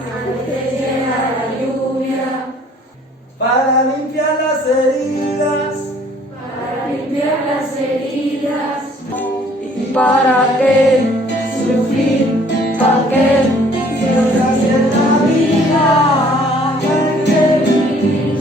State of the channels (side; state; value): both; normal; correlation 0.58